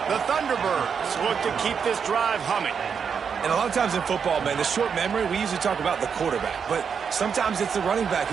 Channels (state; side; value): quieter; left; 6.6 dB